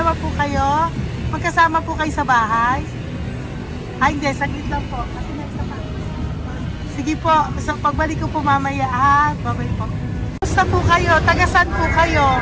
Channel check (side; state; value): both; identical; correlation 1.00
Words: po kayo. Magkasama po kayo sa bahay. Hindi. Saglit lang po. Sige po. So, pagbalik ko po mamaya. Bye-bye po. Gusto po kayo? Taga-saan po kayo?